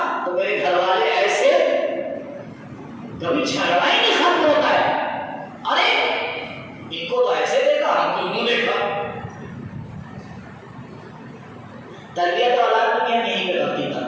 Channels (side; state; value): both; identical; correlation 1.00